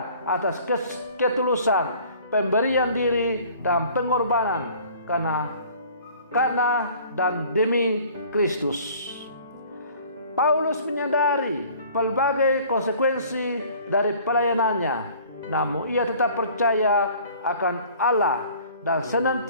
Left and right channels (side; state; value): both; inverted; correlation -0.51